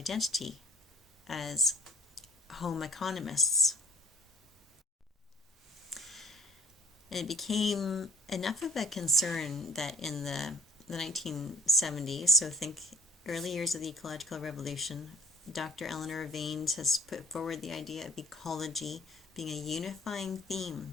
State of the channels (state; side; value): normal; both; correlation 0.50